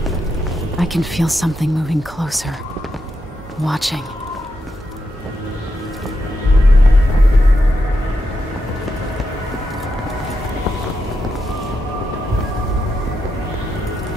I can feel something moving closer. Watching.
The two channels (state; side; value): normal; both; correlation 0.85